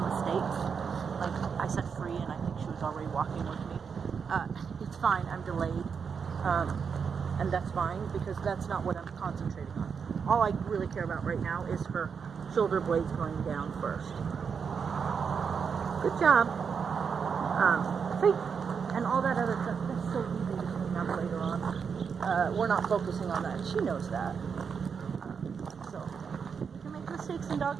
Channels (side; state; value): left; quieter; 6.3 dB